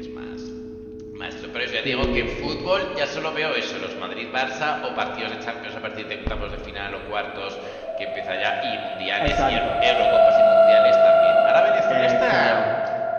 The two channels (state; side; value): identical; both; correlation 1.00